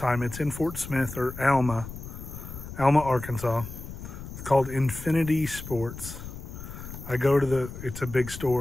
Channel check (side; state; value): left; noise; rumble, 11 dB below the sound